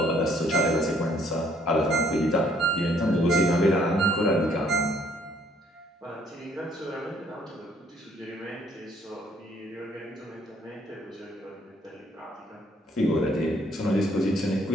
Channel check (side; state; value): both; normal; correlation 0.64